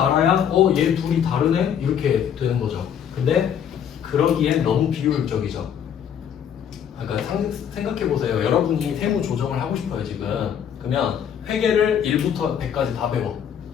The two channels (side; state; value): right; quieter; 8.6 dB